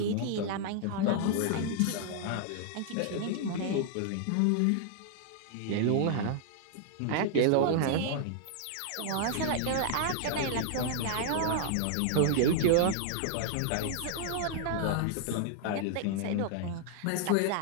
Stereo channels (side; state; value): both; different; correlation -0.01